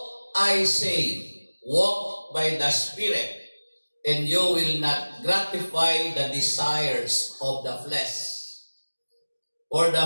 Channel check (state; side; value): inverted; both; correlation -1.00